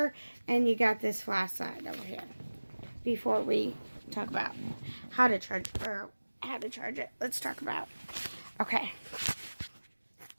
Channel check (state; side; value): inverted; both; correlation -1.00